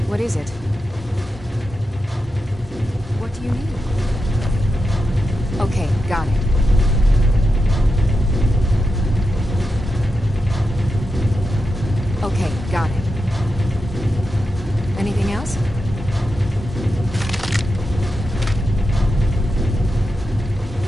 what is it? What do you need? Okay, got it. Okay, got it. Anything else?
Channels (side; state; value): both; normal; correlation 0.88